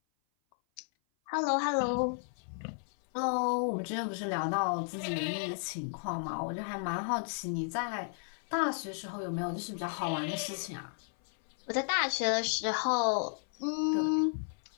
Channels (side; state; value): right; silent; 55 dB below the other